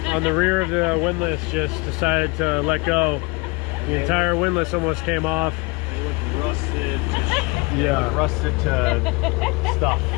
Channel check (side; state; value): right; quieter; 27.1 dB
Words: on the rear of the windlass just decided to let go. The entire windlass almost came off. It looked rusted. Yeah, Rusted to stuff.